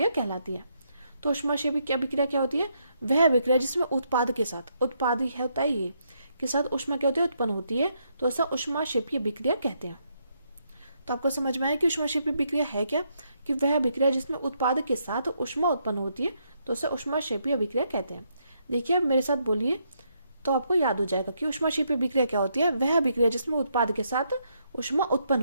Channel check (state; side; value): inverted; both; correlation -0.76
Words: कहलाती है। तो ऊष्माक्षेपीय अभिक्रिया क्या होती है, वह अभिक्रिया जिसमें उत्पाद के साथ, उत्पाद ही होता है ये, के साथ ऊष्मा क्या होती है, उत्पन्न होती है, तो ऐसा ऊष्माक्षेपीय अभिक्रिया कहते हैं। तो आपको समझ में आया कि ऊष्माक्षेपीय अभिक्रिया है क्या, कि वह अभिक्रिया जिसमें उत्पाद के साथ ऊष्मा उत्पन्न होती है, तो उसे ऊष्माक्षेपीय अभिक्रिया कहते हैं। देखिए अब मेरे साथ बोलिए तो आपको याद हो जाएगा कि ऊष्माक्षेपीय अभिक्रिया क्या होती है, वह अभिक्रिया जिसमें उत्पाद के साथ ऊष्मा उत्पन्न